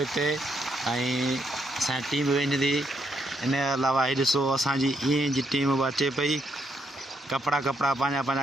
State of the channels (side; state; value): both; normal; correlation 0.76